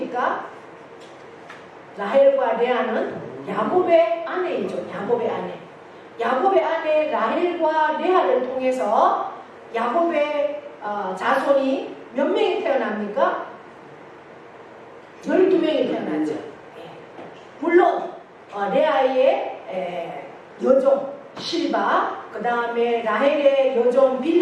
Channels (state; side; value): identical; both; correlation 1.00